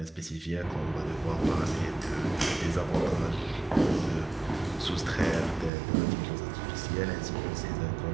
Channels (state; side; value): drops out; left; at 5.7 s